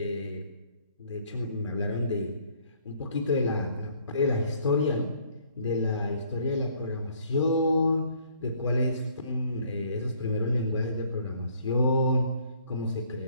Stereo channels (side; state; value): both; inverted; correlation -0.61